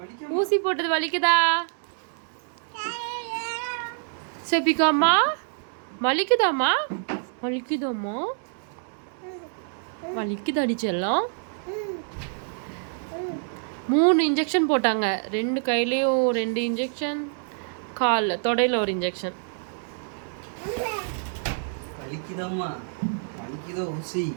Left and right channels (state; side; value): silent; left; digital silence